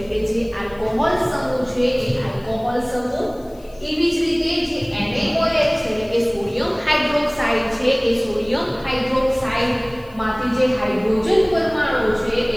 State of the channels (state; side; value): noise; left; hiss, 29 dB below the sound